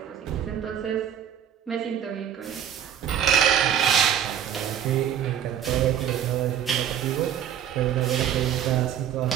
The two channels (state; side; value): quieter; left; 9.6 dB